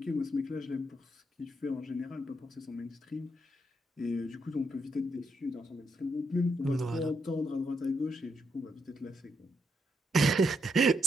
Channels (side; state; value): both; normal; correlation 0.78